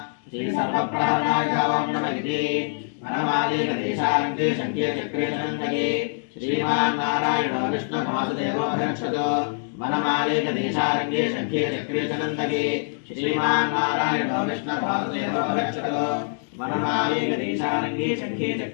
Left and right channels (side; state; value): right; silent; digital silence